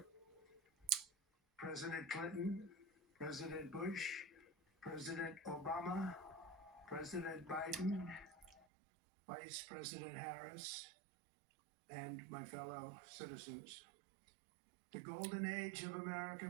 President Clinton, President Bush, President Obama, President Biden, Vice President Harris, and my fellow citizens. The golden age of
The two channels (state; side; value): drops out; left; at 8.7 s